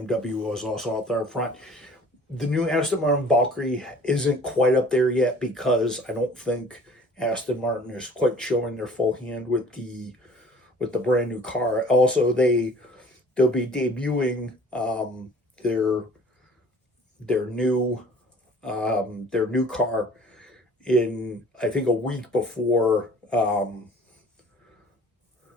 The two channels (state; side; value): normal; both; correlation 0.50